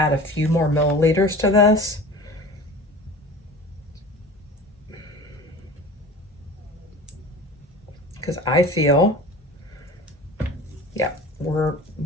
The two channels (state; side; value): normal; both; correlation 0.38